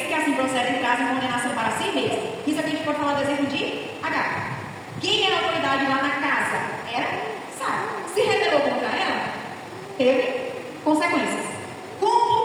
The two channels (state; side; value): identical; both; correlation 1.00